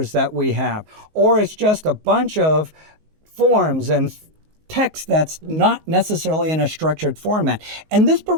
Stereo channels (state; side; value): late; left; 19 ms